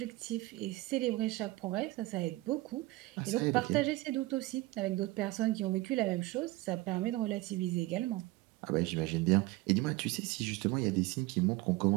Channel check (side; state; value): left; quieter; 19.7 dB